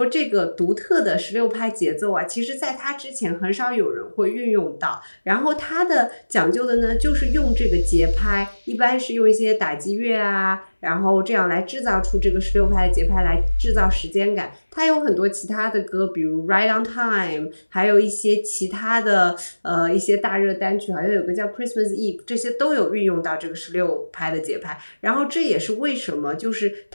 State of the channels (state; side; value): inverted; both; correlation -1.00